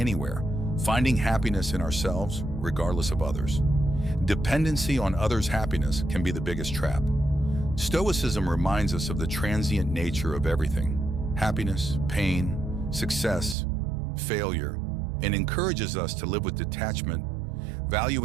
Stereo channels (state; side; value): drops out; left; at 13.6 s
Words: finding happiness in ourselves regardless of others. Dependency on others' happiness can be the biggest trap. Stoicism reminds us of the transient nature of everything: happiness, pain, success, failure, and encourages us to live with detachment,